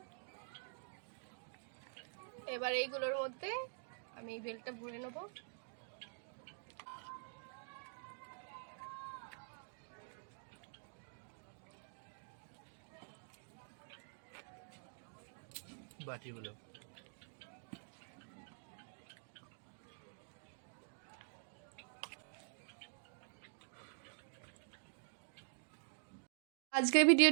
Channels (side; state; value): left; silent; digital silence